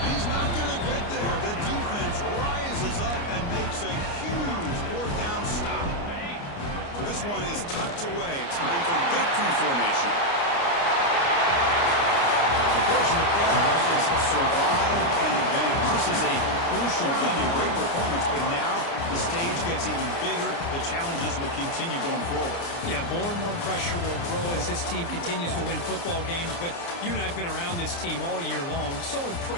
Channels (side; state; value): right; late; 29 ms